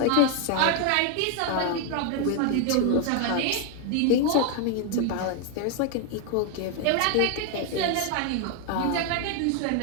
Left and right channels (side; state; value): both; different; correlation 0.01